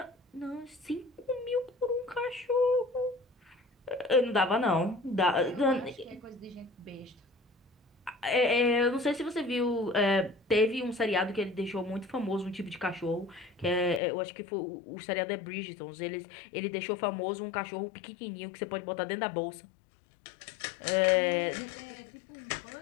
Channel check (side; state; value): right; drops out; at 14.0 s